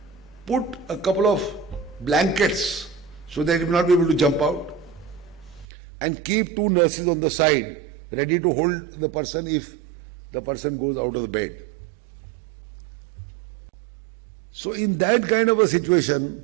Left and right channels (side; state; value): left; drops out; at 5.7 s